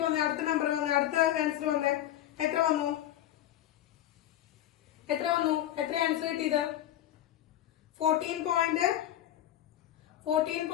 വന്നേ, അടുത്ത ആൻസർ വന്നേ. എത്ര വന്നു? എത്ര ആൻസർ കിട്ടിയത്?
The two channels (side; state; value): right; quieter; 12.4 dB